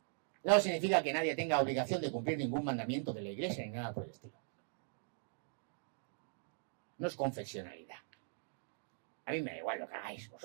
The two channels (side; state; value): left; silent; digital silence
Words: no significa que nadie tenga obligación de cumplir ningún mandamiento de la Iglesia ni nada por el estilo. No es confesionalidad. A mí me da igual lo que hagáis